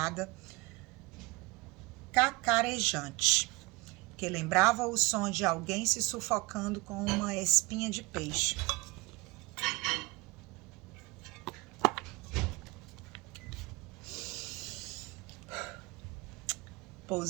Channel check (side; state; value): left; quieter; 23.6 dB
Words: cacarejante, que lembrava o som de alguém se sufocando com uma espinha de peixe.